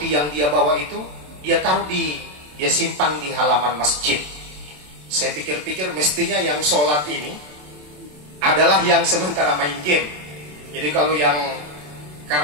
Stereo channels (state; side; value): late; left; 27 ms